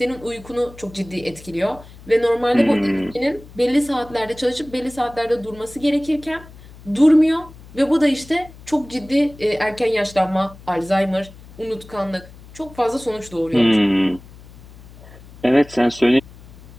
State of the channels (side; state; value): left; noise; hum, 20 dB below the sound